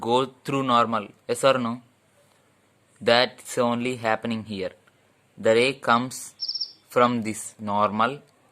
through normal. Yes or no? That's only happening here. The ray comes from this normal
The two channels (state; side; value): identical; both; correlation 1.00